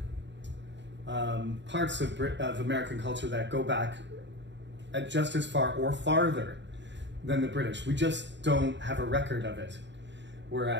parts of American culture that go back just as far or farther than the British. We just don't have a record of it.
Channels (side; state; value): left; late; 0.52 ms